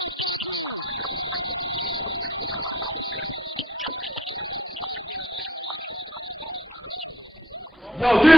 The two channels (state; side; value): normal; both; correlation 0.64